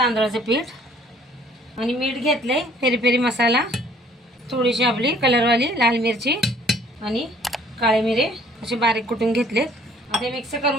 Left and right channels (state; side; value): normal; both; correlation 0.58